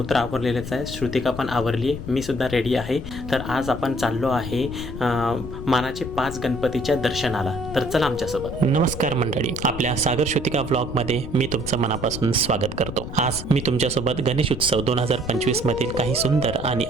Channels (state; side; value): noise; left; rumble, 9 dB below the sound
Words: तर आवरलेलेच आहे, श्रुतिका पण आवरली आहे, मी सुद्धा रेडी आहे. तर आज आपण चाललो आहे मानाचे 5 गणपतीच्या दर्शनाला. तर चला आमच्यासोबत. नमस्कार मंडळी, आपल्या सागर श्रुतिका व्लॉगमध्ये मी तुमचं मनापासून स्वागत करतो. आज मी तुमच्यासोबत गणेश उत्सव 2025 मधील काही सुंदर आणि